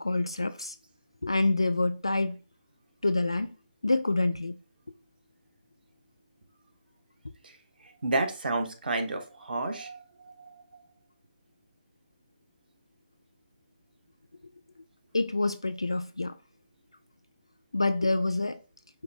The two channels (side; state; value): both; inverted; correlation -0.90